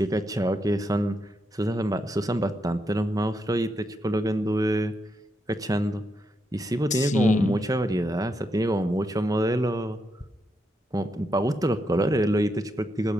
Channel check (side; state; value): both; normal; correlation 0.81